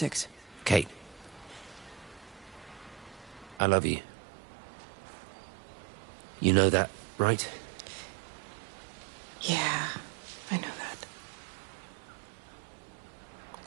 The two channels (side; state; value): left; drops out; at 3.6 s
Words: Kate. I love you. You know that, right? Yeah, I know that.